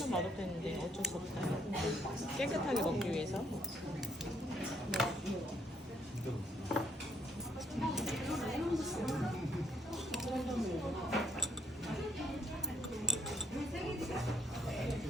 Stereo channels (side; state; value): both; normal; correlation 0.69